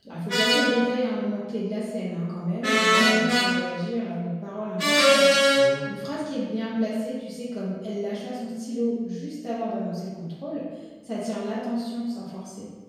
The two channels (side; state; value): both; identical; correlation 1.00